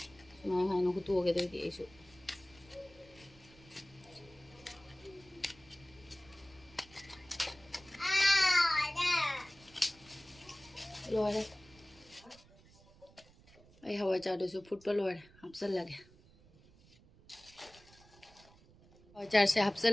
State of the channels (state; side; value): noise; right; rumble, 25 dB below the sound